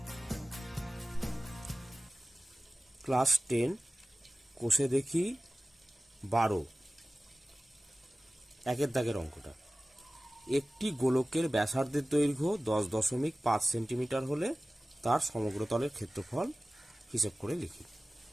ক্লাস 10 কোষে দেখি 12 একের দাগের অঙ্কটা। একটি গোলকের ব্যাসার্ধের দৈর্ঘ্য 10.5 সেন্টিমিটার হলে তার সমগ্র তলের ক্ষেত্রফল হিসেব করে লিখি।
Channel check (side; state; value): both; normal; correlation 0.97